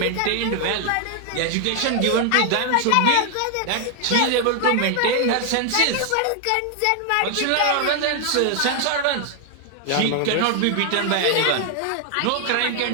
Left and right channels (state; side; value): different; both; correlation 0.00